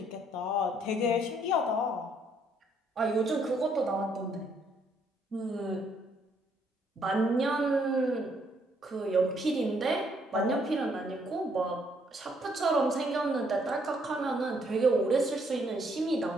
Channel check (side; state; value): both; normal; correlation 0.69